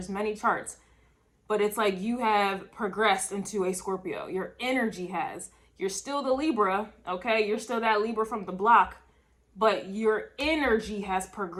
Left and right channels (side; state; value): both; identical; correlation 1.00